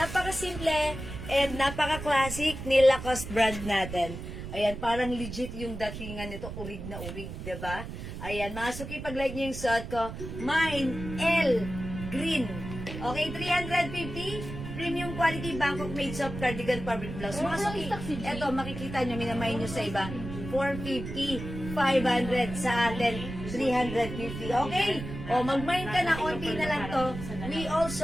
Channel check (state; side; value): noise; right; rumble, 9 dB below the sound